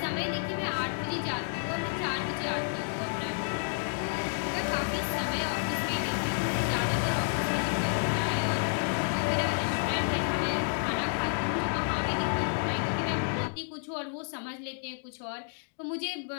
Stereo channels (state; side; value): silent; right; digital silence